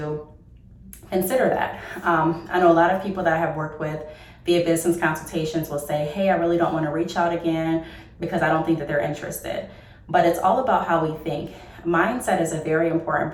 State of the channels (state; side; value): identical; both; correlation 1.00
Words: consider that. I know a lot of people that I have worked with via business consultations will say, hey, I really don't want to reach out again because I don't think that they're interested. But it's all about how we think. Mindset is a very